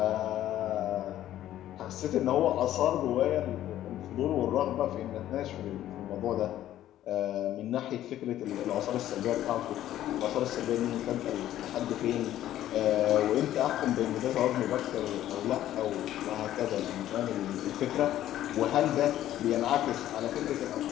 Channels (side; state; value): right; quieter; 12.8 dB